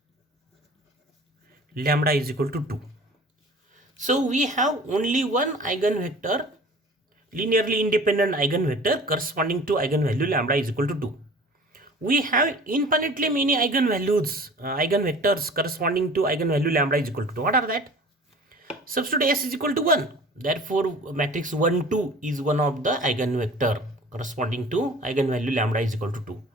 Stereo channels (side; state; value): both; normal; correlation 0.44